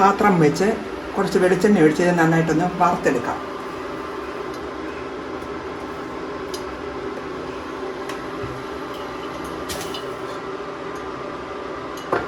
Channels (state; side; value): identical; both; correlation 1.00